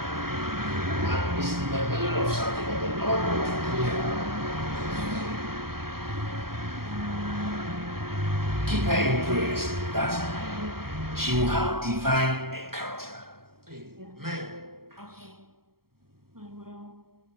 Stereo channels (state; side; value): late; left; 0.94 ms